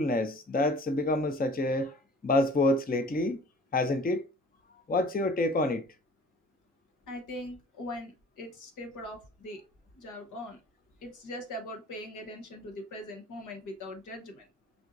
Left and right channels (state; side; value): normal; both; correlation 0.49